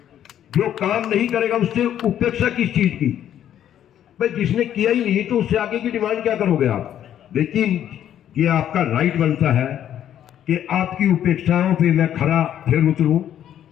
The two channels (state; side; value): quieter; right; 10.6 dB